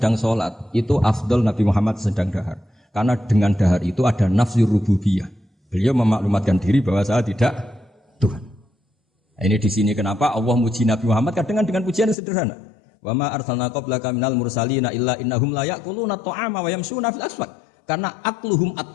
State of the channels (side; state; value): right; drops out; at 12.2 s